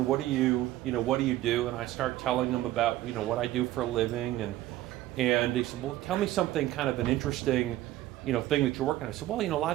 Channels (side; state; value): left; quieter; 15.1 dB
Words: What do you do? And I start telling him about, what I do for a living. And he said, well, tell me something kind of an interesting, thing that you're working on. I said, well, a lot